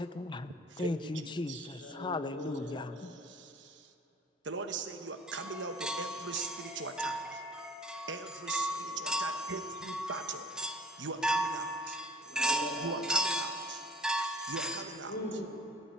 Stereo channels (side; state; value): both; normal; correlation 0.51